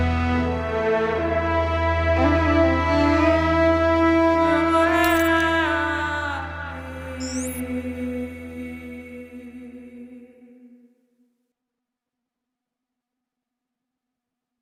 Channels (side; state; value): both; identical; correlation 1.00